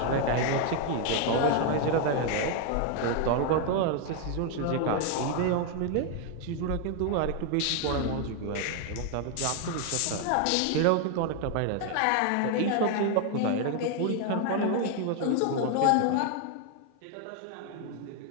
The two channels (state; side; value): different; both; correlation 0.01